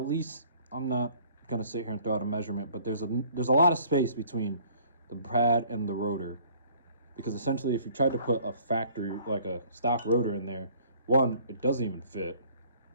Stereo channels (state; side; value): inverted; both; correlation -0.56